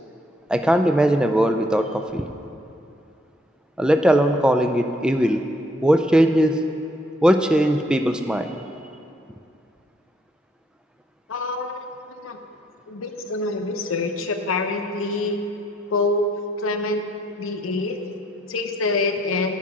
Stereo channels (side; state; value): both; normal; correlation 0.69